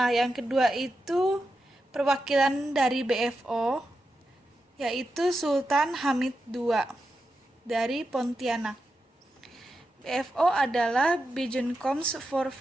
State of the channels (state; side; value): normal; both; correlation 0.88